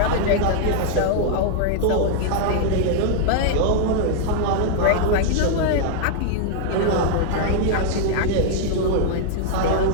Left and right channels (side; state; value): both; different; correlation -0.01